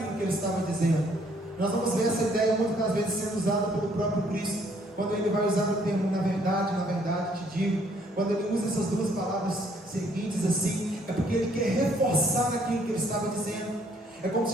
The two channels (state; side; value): normal; both; correlation 0.65